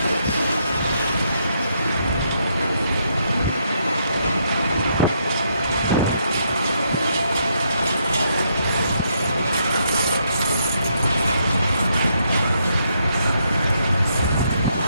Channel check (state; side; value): inverted; both; correlation -0.75